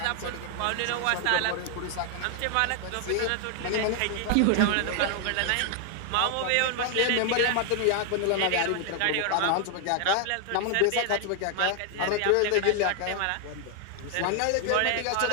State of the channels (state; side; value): different; both; correlation 0.00